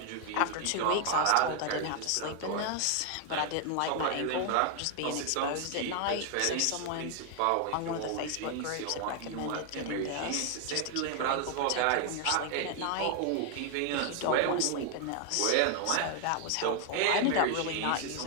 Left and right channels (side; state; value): both; different; correlation 0.00